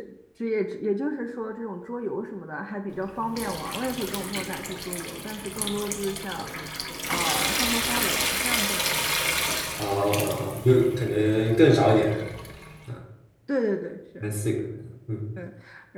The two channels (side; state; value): both; identical; correlation 1.00